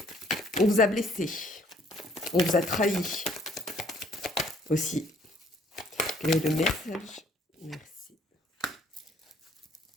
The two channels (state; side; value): normal; both; correlation 0.62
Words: on vous a blessé. On vous a trahi aussi. Quel est le message? Merci.